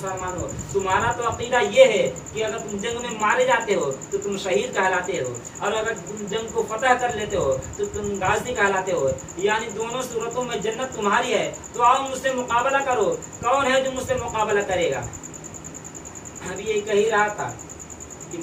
तुम्हारा तो अकीदा ये है कि अगर तुम जंग में मारे जाते हो तो तुम शहीद कहलाते हो, और अगर तुम जंग को फतह कर लेते हो तो तुम गाजी कहलाते हो, यानी दोनों सूरतों में जन्नत तुम्हारी है। तो आओ मुझसे मुकाबला करो, कौन है जो मुझसे मुकाबला करेगा। अभी ये कह ही रहा था कि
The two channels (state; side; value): identical; both; correlation 1.00